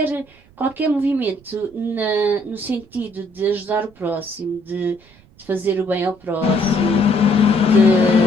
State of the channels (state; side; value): noise; right; rumble, 28 dB below the sound